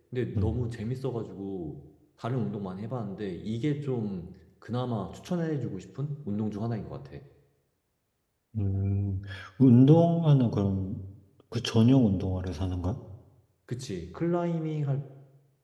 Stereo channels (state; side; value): identical; both; correlation 1.00